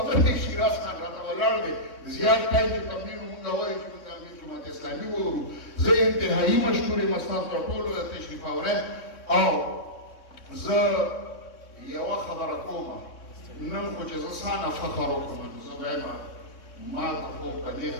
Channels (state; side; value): late; right; 3.6 ms